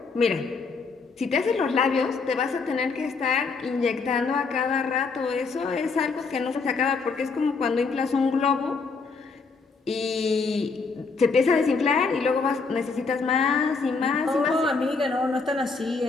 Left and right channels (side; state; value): right; quieter; 4.5 dB